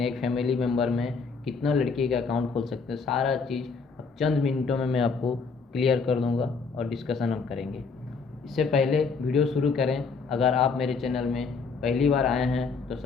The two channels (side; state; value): right; quieter; 4.9 dB